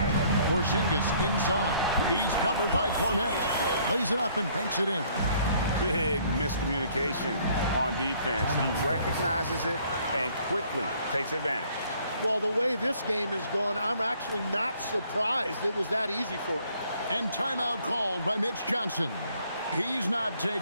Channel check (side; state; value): both; inverted; correlation -0.61